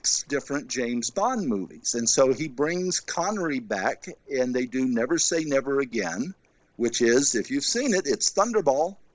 different James Bond movies. And so he brings Connery back, and they do Never Say Never Again, which is, if you've seen it, it's Thunderball.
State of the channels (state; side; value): identical; both; correlation 1.00